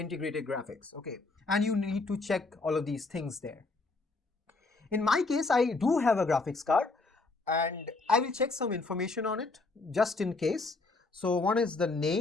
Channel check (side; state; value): right; quieter; 3.6 dB